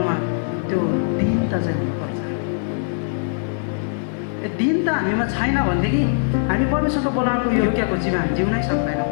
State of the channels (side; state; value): right; silent; 64 dB below the other